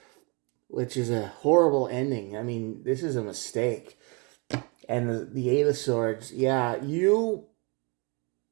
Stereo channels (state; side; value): quieter; left; 31.2 dB